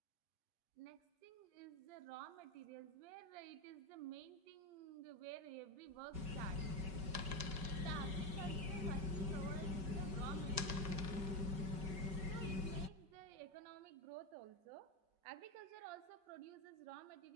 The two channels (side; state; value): left; late; 5.3 ms